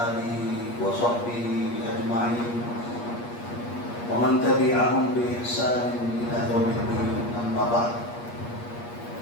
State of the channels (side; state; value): right; late; 8.4 ms